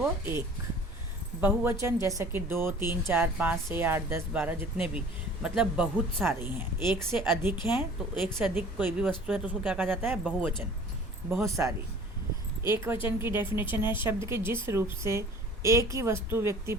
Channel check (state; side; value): normal; both; correlation 0.48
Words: एक। बहुवचन जैसा कि 2, 3, 4, 5, 6, 8, 10, 12 जितने भी, मतलब बहुत सारे हैं, एक से अधिक हैं, तो एक से अधिक कोई भी वस्तु है तो उसको क्या कहा जाता है, बहुवचन, बहुत सारी। एक वचन की डेफिनेशन है शब्द के जिस रूप से एक ही वस्तु व्यक्ति